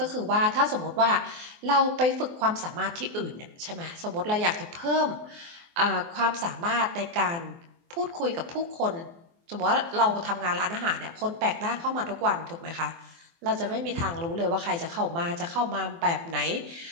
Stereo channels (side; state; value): left; late; 24 ms